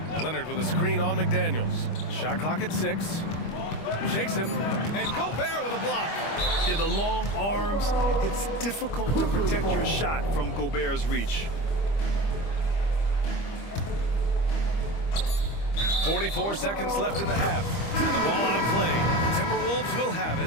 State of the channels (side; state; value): right; late; 25 ms